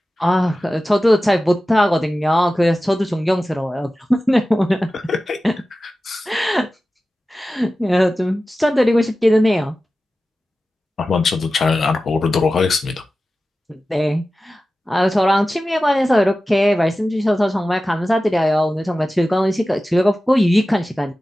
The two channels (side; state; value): both; normal; correlation 0.95